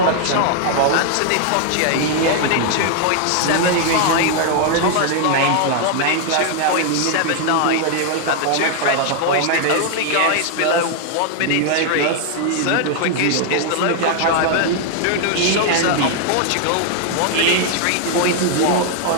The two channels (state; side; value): different; both; correlation 0.00